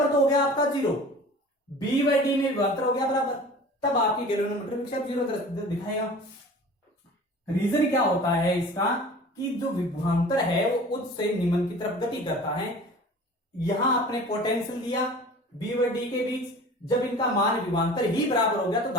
तो हो गया आपका 0, बी बाई डी में विभवांतर हो गया बराबर, तब आपकी गैल्वेनोमीटर विक्षेप 0 दिखाएगा। रीजन क्या होता है इसका कि जो विभवांतर है वो उच्च से निम्न की तरफ गति करता है। यहां आपने पोटेंशियल दिया बी व डी के बीच, जब इनका मान विभवांतर ही बराबर हो गया तो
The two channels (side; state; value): both; normal; correlation 0.42